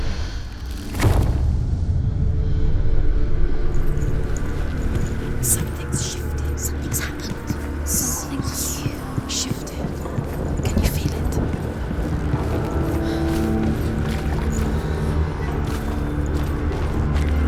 Something's shifted. Something's happened. Something's shifted. Can you feel it?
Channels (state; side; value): identical; both; correlation 1.00